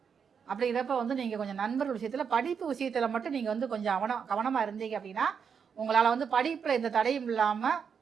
அப்படிங்கிறப்ப வந்து நீங்கள் கொஞ்சம் நண்பர்கள் விஷயத்தில் படிப்பு விஷயத்தில் மட்டும் நீங்கள் வந்து கொஞ்சம் கவனமாக இருந்தீங்க அப்படின்னா உங்களால் வந்து படிப்பில் எந்த தடையும் இல்லாமல்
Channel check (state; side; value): quieter; left; 6.7 dB